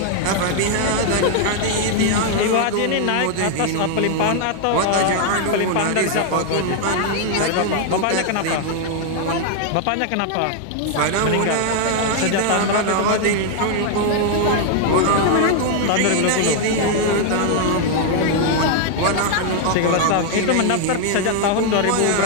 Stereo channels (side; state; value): both; different; correlation 0.00